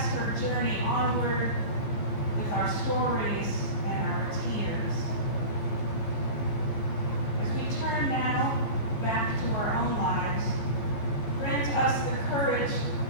her journey onward with our stories and our tears. As we turn now back to our own lives, grant us the courage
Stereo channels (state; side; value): late; right; 14 ms